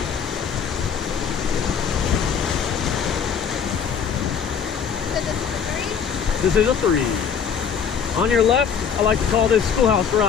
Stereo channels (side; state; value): right; quieter; 7.1 dB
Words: This is a 3. On your left, I like to call this Schoolhouse